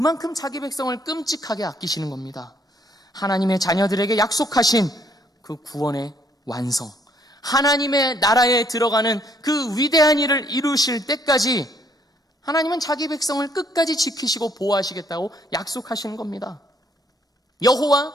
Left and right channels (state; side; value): normal; both; correlation 0.67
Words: 자기 백성을 끔찍하게 아끼시는 겁니다. 하나님의 자녀들에게 약속하신 그 구원의 완성, 하나님의 나라에 들어가는 그 위대한 일을 이루실 때까지 하나님은 자기 백성을 끝까지 지키시고 보호하시겠다고 약속하시는 겁니다. 여호와